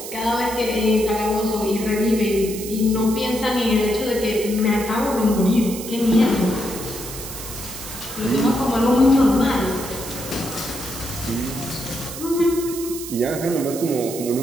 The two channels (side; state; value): right; noise; hiss, 10 dB below the sound